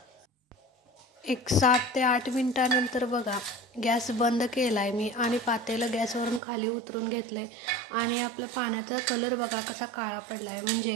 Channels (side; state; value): left; drops out; at 6.4 s